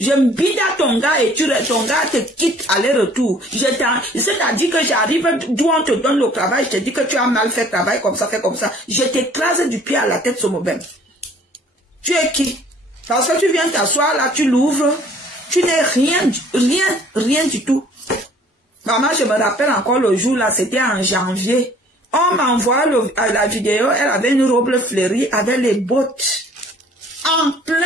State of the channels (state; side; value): normal; both; correlation 0.55